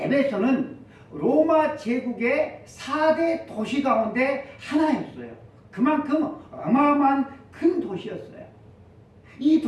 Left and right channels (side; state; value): both; identical; correlation 1.00